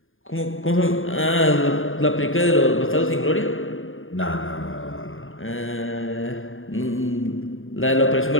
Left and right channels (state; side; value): late; right; 0.59 ms